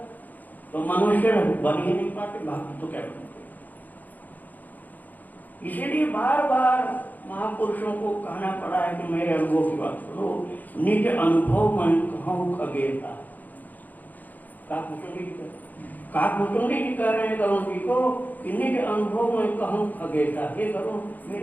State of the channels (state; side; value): late; right; 0.083 ms